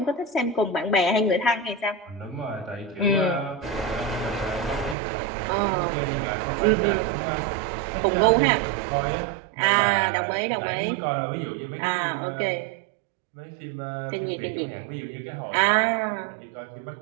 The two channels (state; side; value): drops out; left; at 5.0 s